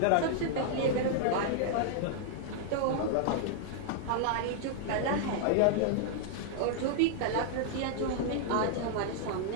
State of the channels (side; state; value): both; different; correlation -0.01